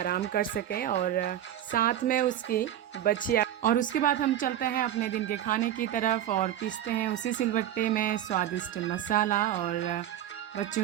कर सके और साथ में उसकी बछिया। और उसके बाद हम चलते हैं अपने दिन के खाने की तरफ और पीसते हैं उसी सिलबट्टे में स्वादिष्ट मसाला और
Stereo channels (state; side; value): quieter; left; 11.5 dB